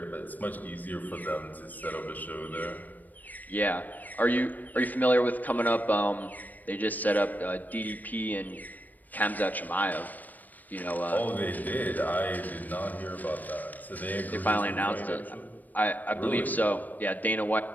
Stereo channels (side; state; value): right; late; 0.083 ms